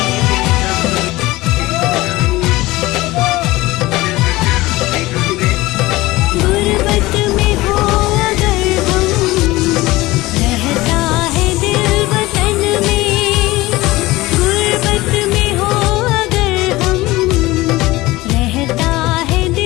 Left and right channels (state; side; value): quieter; right; 19.4 dB